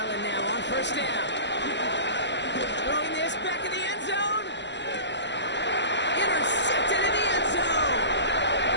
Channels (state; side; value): late; right; 0.51 ms